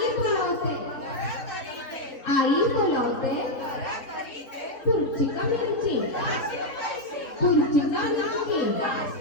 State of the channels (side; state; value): right; late; 3.9 ms